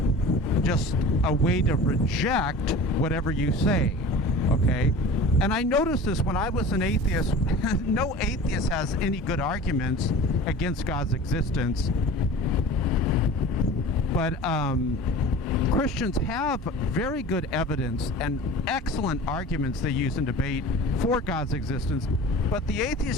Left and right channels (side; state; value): both; normal; correlation 0.39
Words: just a way to reject whatever you say, okay? And I noticed this when I was an atheist. No atheist has any good arguments against God's existence, but Christians have very good evidence and excellent arguments they use in debate for God's existence, but the